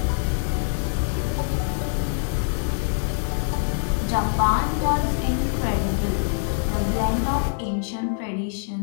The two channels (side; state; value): right; silent; 62 dB below the other